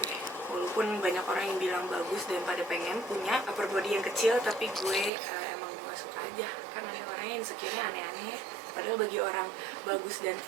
walaupun banyak orang yang bilang bagus dan pada pengen punya upper body yang kecil, tapi gue emang gak suka aja. Kan ada orang yang insecure-nya aneh-aneh, padahal bagi orang bagus dan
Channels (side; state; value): left; drops out; at 5.1 s